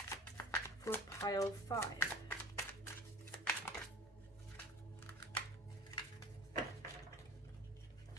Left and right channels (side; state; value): left; noise; rumble, 27 dB below the sound